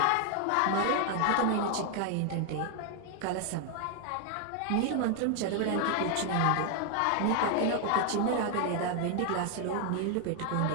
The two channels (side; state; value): both; different; correlation 0.00